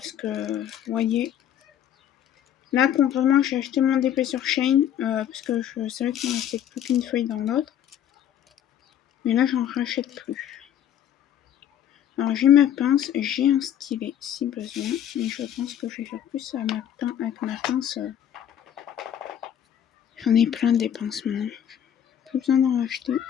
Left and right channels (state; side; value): quieter; right; 10.0 dB